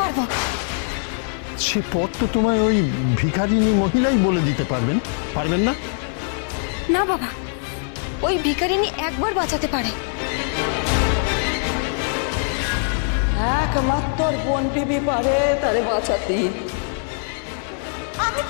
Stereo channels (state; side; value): silent; right; 64 dB below the other